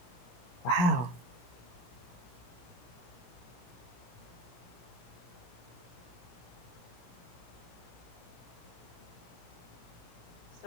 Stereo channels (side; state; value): right; late; 17 ms